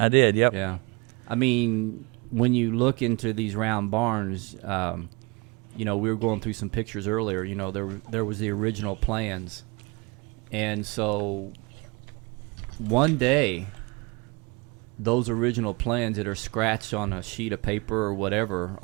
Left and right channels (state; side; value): quieter; left; 27.7 dB